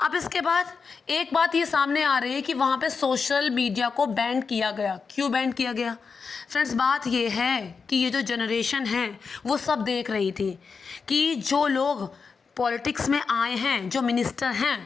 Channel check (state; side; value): quieter; right; 5.2 dB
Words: अब इसके बाद एक बात ये सामने आ रही है कि वहाँ पे सोशल मीडिया को बैन किया गया। क्यों बैन किया गया? फ्रेंड्स, बात ये है कि ये जो जनरेशन है वो सब देख रही थी कि जो लोग पॉलिटिक्स में आए हैं, जो मिनिस्टर